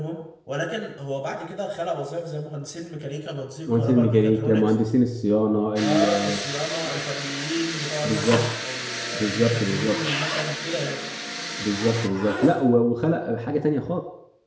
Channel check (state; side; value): identical; both; correlation 1.00